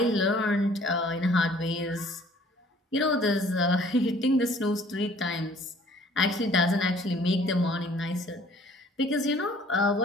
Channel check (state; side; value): normal; both; correlation 0.55